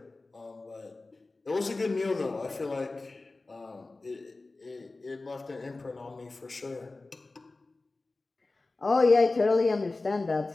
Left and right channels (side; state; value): right; quieter; 3.4 dB